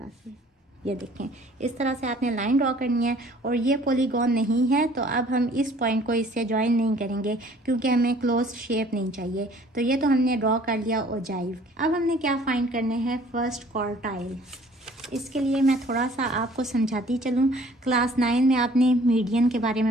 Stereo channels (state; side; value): normal; both; correlation 0.55